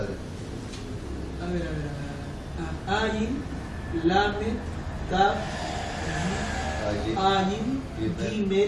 A ver. Ayin, Lamed, Tap, Allí. Ayin,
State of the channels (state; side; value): identical; both; correlation 1.00